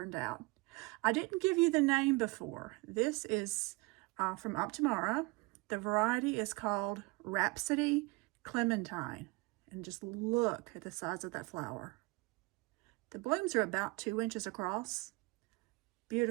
out. I didn't give you the name before. This is from Optimara. The variety is called Rhapsody Clementine. And just look at the size of that flower. The blooms are about 2 inches across.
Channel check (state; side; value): quieter; left; 25.5 dB